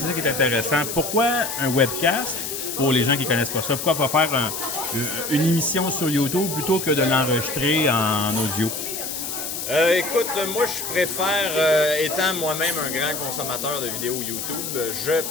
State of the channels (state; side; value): noise; left; hiss, 5 dB below the sound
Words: ça qui est intéressant. Pourquoi un webcast? Pour les gens qui connaissent pas ça, pourquoi pas faire une émission sur YouTube plutôt que de l'enregistrer en audio? Écoute, moi je préfère, étant moi-même un grand consommateur de vidéos YouTube, je